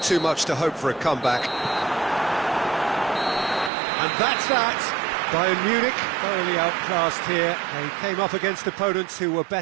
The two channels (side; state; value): left; drops out; at 3.7 s